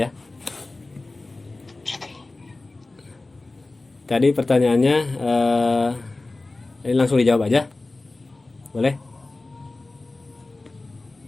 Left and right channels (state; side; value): quieter; right; 3.2 dB